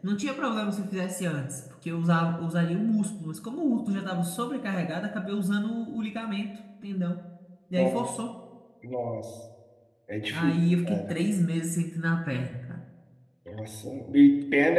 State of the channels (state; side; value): identical; both; correlation 1.00